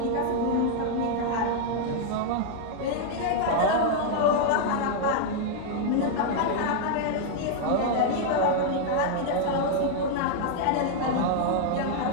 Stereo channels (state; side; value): different; both; correlation 0.00